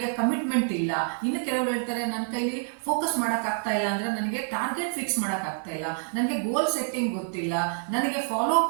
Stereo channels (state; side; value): silent; left; digital silence